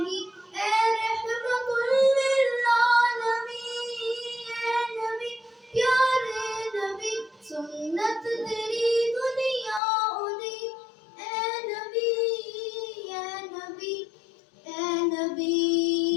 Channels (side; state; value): right; drops out; at 9.8 s